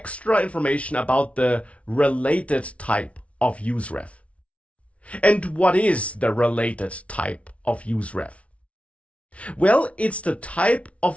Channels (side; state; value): right; late; 0.063 ms